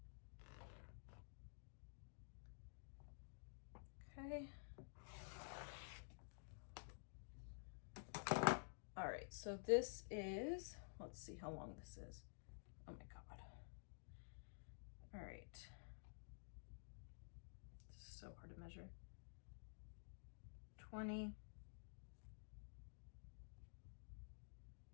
Okay. All right, so this is, let's see how long this is. Oh my God. All right. This is so hard to measure. 20,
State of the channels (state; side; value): silent; right; digital silence